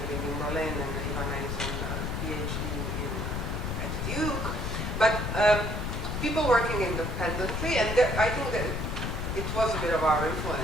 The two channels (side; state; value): left; noise; rumble, 2 dB below the sound